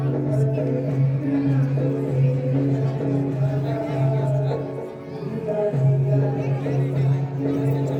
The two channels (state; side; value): identical; both; correlation 1.00